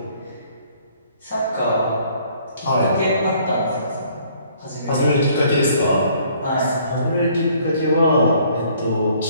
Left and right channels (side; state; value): both; inverted; correlation -0.61